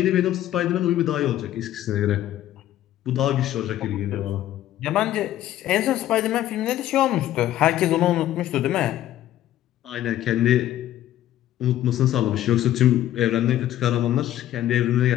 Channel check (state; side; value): quieter; right; 13.0 dB